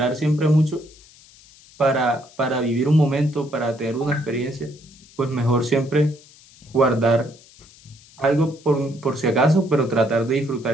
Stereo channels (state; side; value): noise; left; hiss, 25 dB below the sound